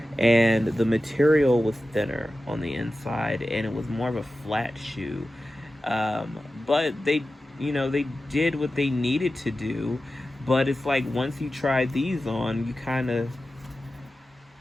and the material was thinner on the inside, and it was more of a flat shoe. But they did what they needed to do. But it's like once you try these on,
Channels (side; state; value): both; normal; correlation 0.94